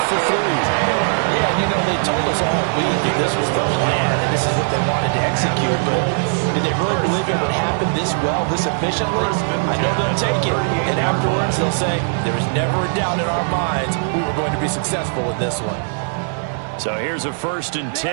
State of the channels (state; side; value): silent; left; 63 dB below the other